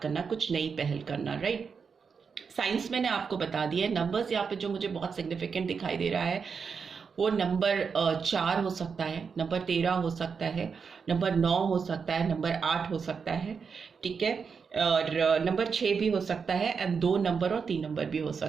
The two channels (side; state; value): left; quieter; 5.8 dB